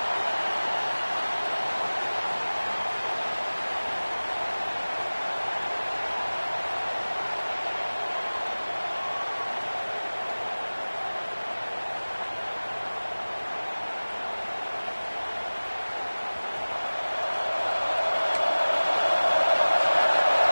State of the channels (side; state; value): both; inverted; correlation -1.00